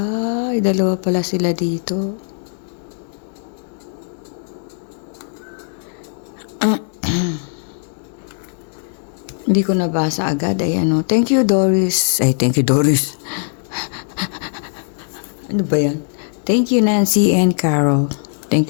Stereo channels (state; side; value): silent; right; digital silence